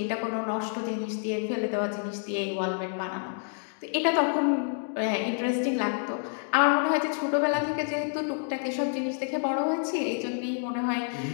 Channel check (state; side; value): silent; right; 59 dB below the other